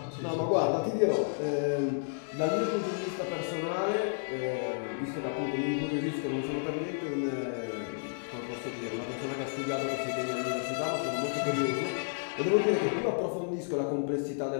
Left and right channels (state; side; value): silent; right; digital silence